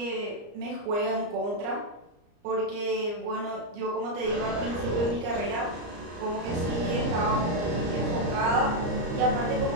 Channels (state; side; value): late; left; 34 ms